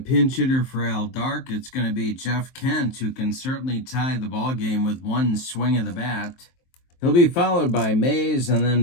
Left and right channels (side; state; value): right; late; 23 ms